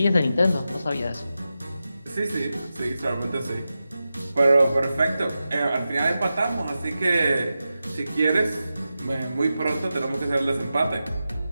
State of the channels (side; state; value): both; inverted; correlation -0.92